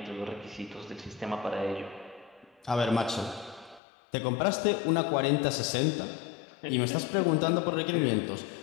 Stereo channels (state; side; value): drops out; right; at 3.8 s